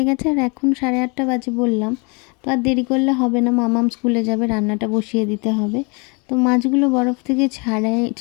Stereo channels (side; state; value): right; quieter; 31.8 dB